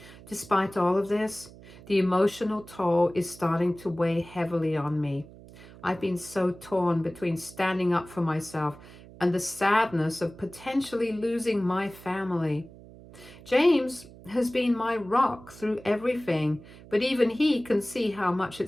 Despite all of this, the emotional toll is starting to weigh heavily on me. I've been so torn between standing up for myself and the sadness of potentially losing my family. James has been my rock through everything, but even he can see how much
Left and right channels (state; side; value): noise; right; hum, 19 dB below the sound